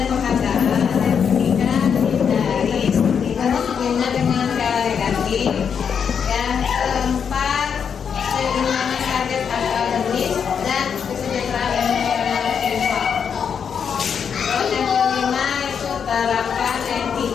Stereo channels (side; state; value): right; quieter; 7.1 dB